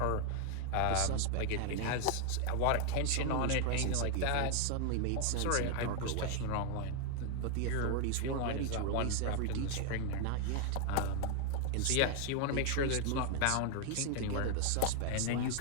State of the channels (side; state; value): both; different; correlation 0.00